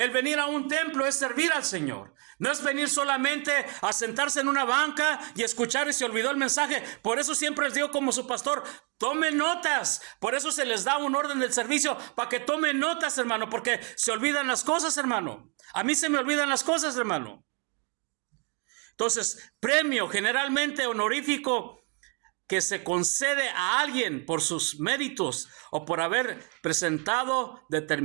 venir a un templo es servir al Señor. No es venir solamente a sentarse en una banca y escuchar y se olvidó el mensaje. Por eso siempre les digo como su pastor, tomen notas. Por eso se les da un orden del servicio para que tomen notas, hermano, porque se olvidan las cosas, hermano. A mí se me olvidan las cosas, hermano. Entonces, premio generalmente honorífico que se concede a alguien por sus méritos o por haber presentado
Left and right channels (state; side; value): quieter; left; 35.2 dB